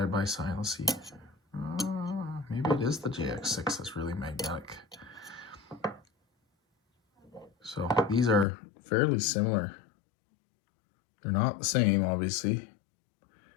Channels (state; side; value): drops out; right; at 8.5 s